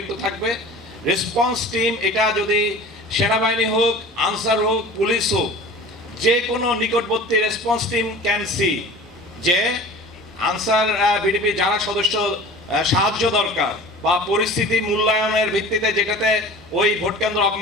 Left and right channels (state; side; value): normal; both; correlation 0.40